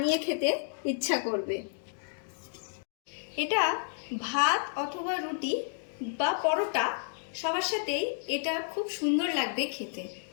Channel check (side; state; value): right; silent; digital silence